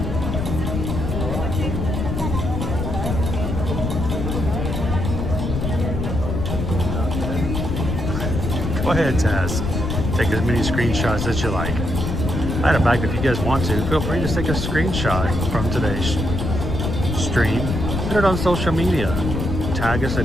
Go ahead, Taz. Take as many screenshots as you like. Matter of fact, if you guys want to, feel free to take a screenshot from today's stream. Put it on social media. Tag us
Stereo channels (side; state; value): left; noise; rumble, 2 dB below the sound